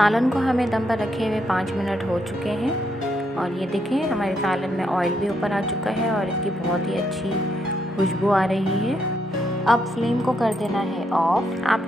को हमें दम पर रखे हुए 5 मिनट हो चुके हैं और ये देखें हमारे सालन में ऑयल भी ऊपर आ चुका है और इसकी बहुत ही अच्छी खुशबू आ रही है। अब फ्लेम को कर देना है ऑफ।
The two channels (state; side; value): normal; both; correlation 0.77